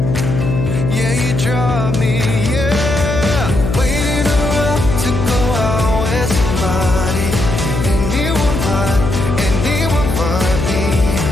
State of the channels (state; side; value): noise; left; hum, 2 dB below the sound